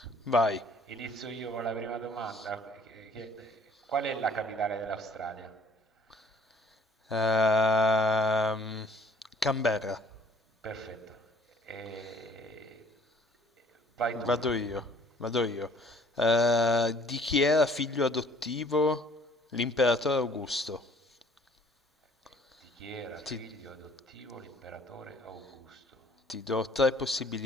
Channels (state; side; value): normal; both; correlation 0.57